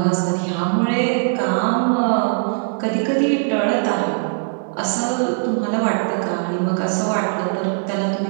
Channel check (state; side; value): silent; left; digital silence